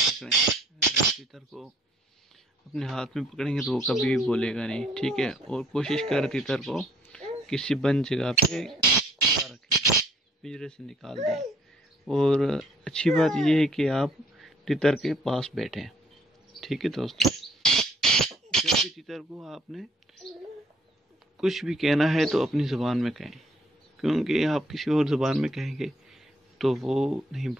अगर आप तीतर को अपने हाथ में पकड़ेंगे तो वो कभी भी बोलेगा नहीं। ठीक है, और कोशिश कर तीतर को किसी बंद जगह पे खुला रखें, पिंजरे से निकाल दें। और अच्छी बात यह है कि आप तीतर के पास बैठें। ठीक है दोस्तों, जब भी तीतर को आपने कुछ भी कहना है तो अपनी ज़ुबान में कहें, क्योंकि आप किसी और ज़ुबान में कहेंगे तो वो नहीं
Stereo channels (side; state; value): both; normal; correlation 0.63